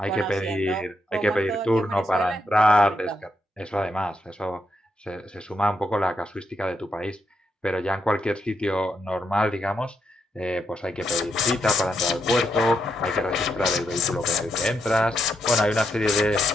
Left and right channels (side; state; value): both; normal; correlation 0.81